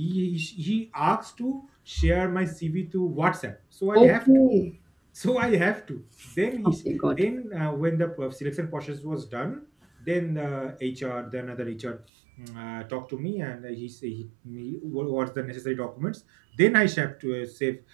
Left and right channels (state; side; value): drops out; left; at 12.1 s